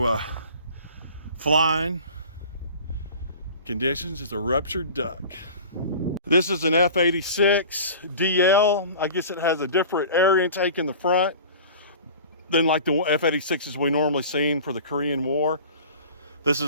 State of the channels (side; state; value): both; inverted; correlation -0.40